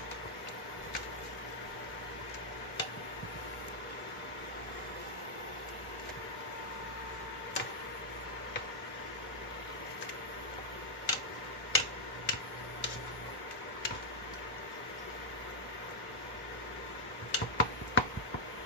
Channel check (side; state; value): both; normal; correlation -0.05